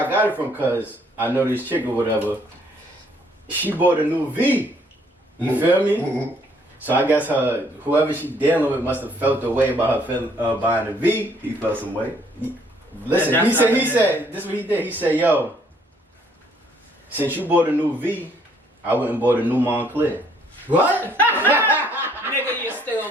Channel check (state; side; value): normal; both; correlation 0.65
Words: I got it from, cause I know this chick or whatever. She bought a new V. You feel me? So I guess whoever she dealing with must have felt the way about her buying a V. He felt some way. Listen, he said, this is what he did. He said, yo, since you bought a new V, I went and bought a new Montclair. What? Nigga, you're